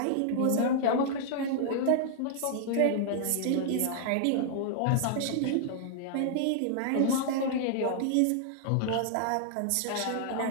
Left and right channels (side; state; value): both; different; correlation -0.01